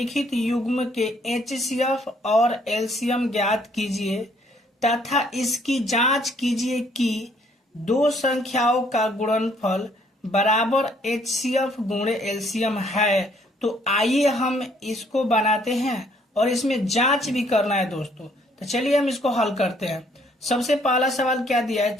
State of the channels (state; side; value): normal; both; correlation 0.65